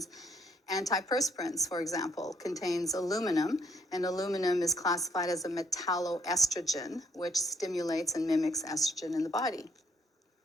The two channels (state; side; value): normal; both; correlation 0.68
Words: Antiperspirants, for example, contains aluminum, and aluminum is classified as a metalloestrogen, which stimulates and mimics estrogen in the body.